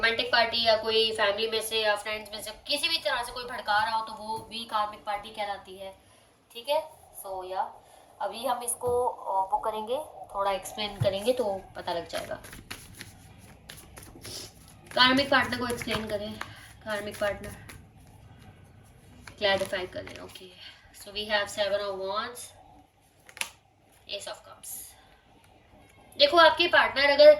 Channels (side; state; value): both; identical; correlation 1.00